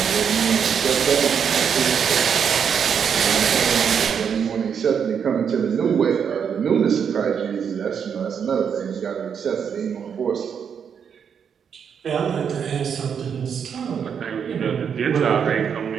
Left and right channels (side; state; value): left; quieter; 7.3 dB